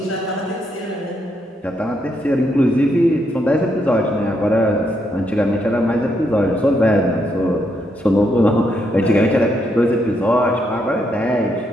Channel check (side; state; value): both; normal; correlation 0.77